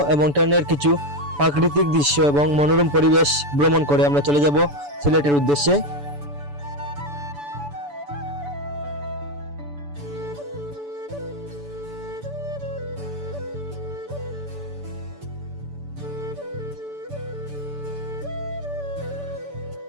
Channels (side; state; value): left; late; 6.9 ms